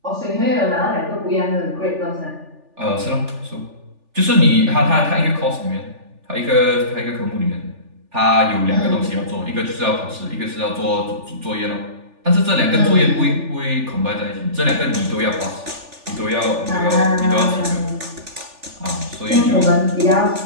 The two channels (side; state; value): left; late; 3.4 ms